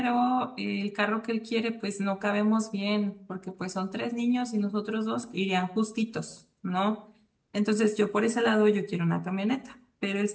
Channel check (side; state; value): both; identical; correlation 1.00